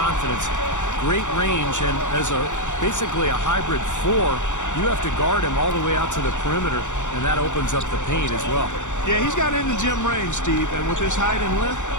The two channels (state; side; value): late; right; 0.85 ms